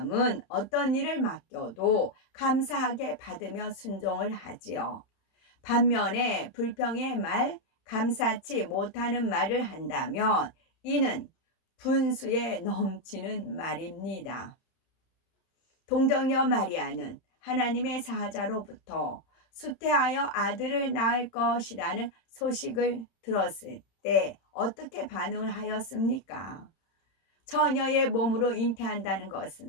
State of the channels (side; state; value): right; late; 31 ms